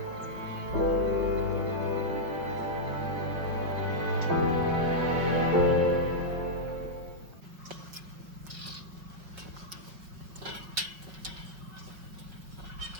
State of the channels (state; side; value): late; left; 5.2 ms